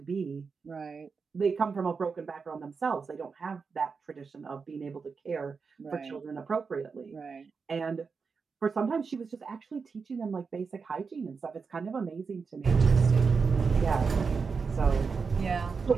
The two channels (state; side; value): quieter; left; 5.2 dB